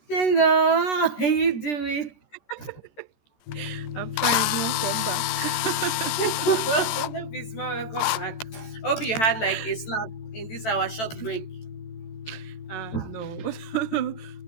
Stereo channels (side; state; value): right; late; 14 ms